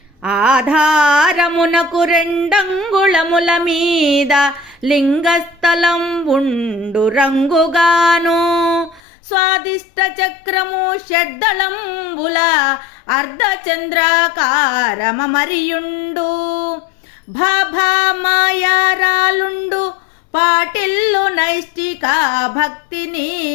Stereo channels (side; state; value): right; drops out; at 9.0 s